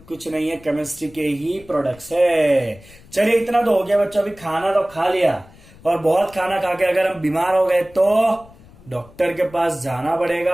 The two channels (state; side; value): noise; left; rumble, 23 dB below the sound